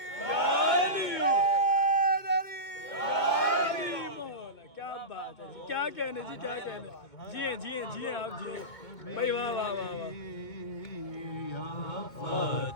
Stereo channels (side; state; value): right; late; 2.2 ms